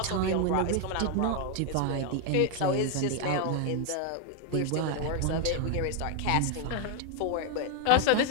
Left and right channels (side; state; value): both; different; correlation 0.00